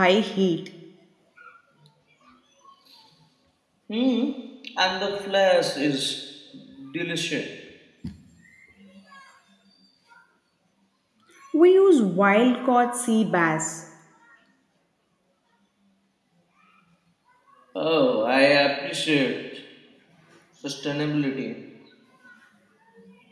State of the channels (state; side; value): identical; both; correlation 1.00